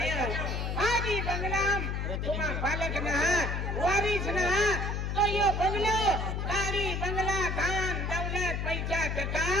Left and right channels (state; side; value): noise; left; hum, 1 dB below the sound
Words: है आज ही बंगलाम तुम्हारा बालक ना वारिस ना तो यो बंगलो गाड़ी बंगला धान दौलत पैसा टका